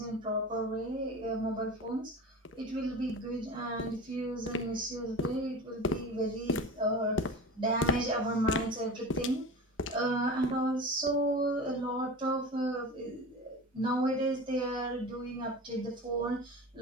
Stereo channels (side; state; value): both; normal; correlation 0.32